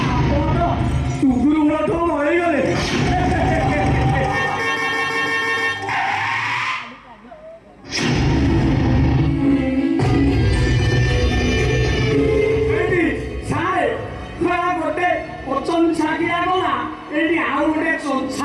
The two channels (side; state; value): both; identical; correlation 1.00